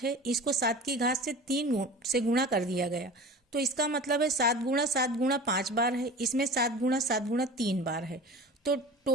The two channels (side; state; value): both; normal; correlation 0.37